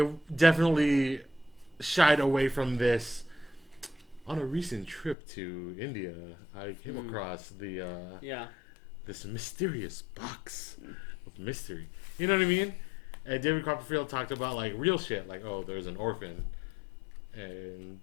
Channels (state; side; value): drops out; right; at 5.2 s